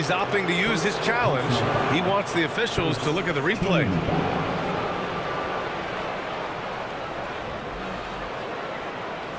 opting to use his challenge. He wants the officials to look at the replay.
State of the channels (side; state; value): both; identical; correlation 1.00